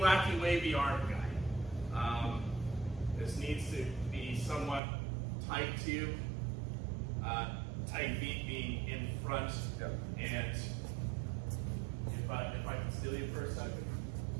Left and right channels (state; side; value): drops out; left; at 4.8 s